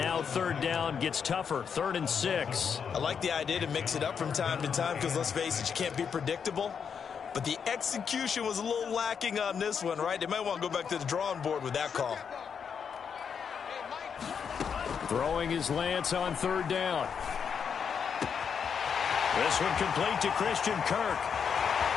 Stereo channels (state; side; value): quieter; right; 6.8 dB